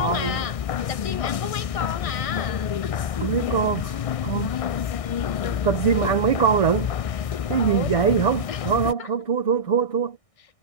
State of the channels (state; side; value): late; right; 1.6 ms